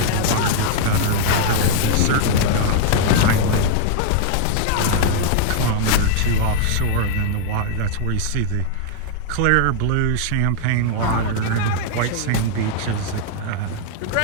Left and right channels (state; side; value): different; both; correlation -0.01